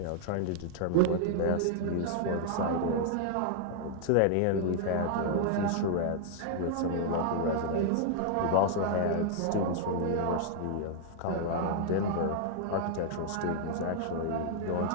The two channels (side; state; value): both; different; correlation 0.00